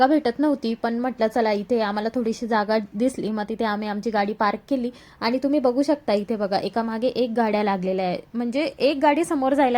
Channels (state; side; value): identical; both; correlation 1.00